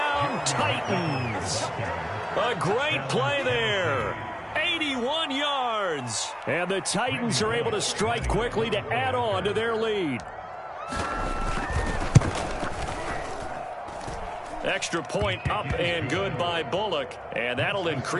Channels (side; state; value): both; identical; correlation 1.00